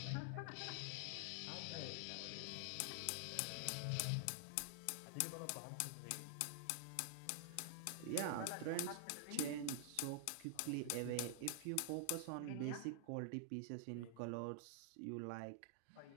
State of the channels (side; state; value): both; different; correlation 0.00